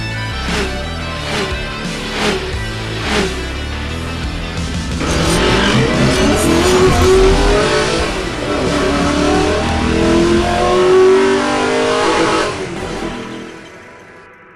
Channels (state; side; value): identical; both; correlation 1.00